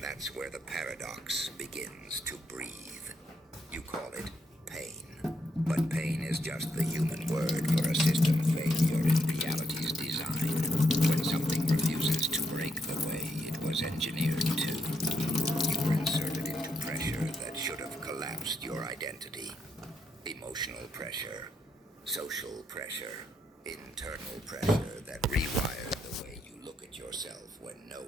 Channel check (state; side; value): normal; both; correlation 0.78